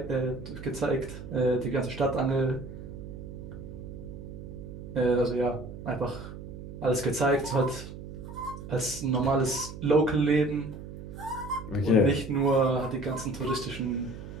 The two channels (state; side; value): noise; right; hum, 11 dB below the sound